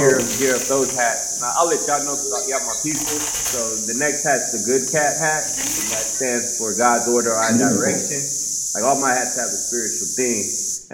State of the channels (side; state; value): both; identical; correlation 1.00